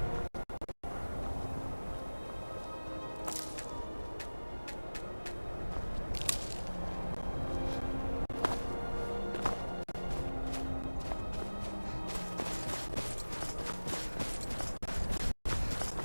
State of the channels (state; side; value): inverted; both; correlation -1.00